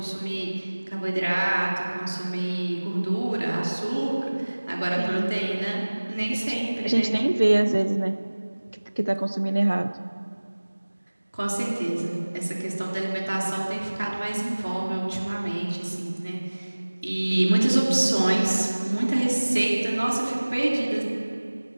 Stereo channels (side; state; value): both; inverted; correlation -1.00